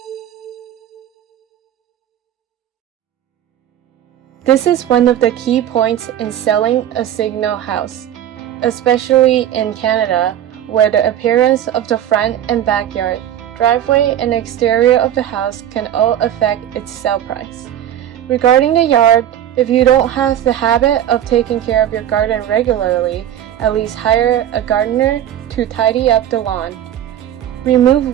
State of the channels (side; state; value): left; quieter; 11.1 dB